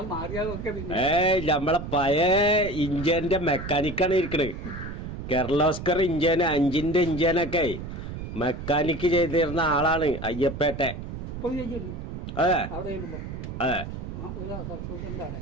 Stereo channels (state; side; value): noise; right; rumble, 8 dB below the sound